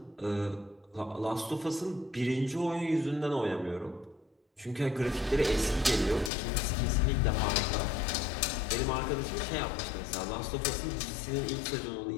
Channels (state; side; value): drops out; right; at 6.3 s